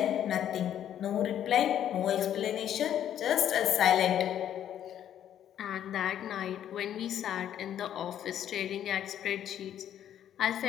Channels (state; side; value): quieter; right; 10.4 dB